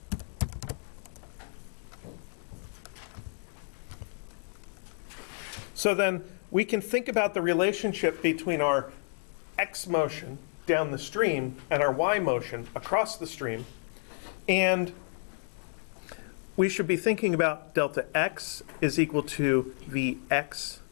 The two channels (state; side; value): silent; right; digital silence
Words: So then we can think about the relationship between our x motion down the stream and our y motion across the stream. And we should be thinking about delta x is equal to Vx